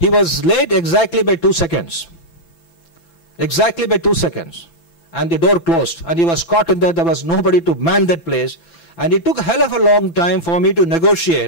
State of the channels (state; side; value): late; right; 6.0 ms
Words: was late exactly by 2 seconds. Exactly by 2 seconds. And the door closed, and he was caught in there. There was nobody to man that place, and it took a hell of a long time for me to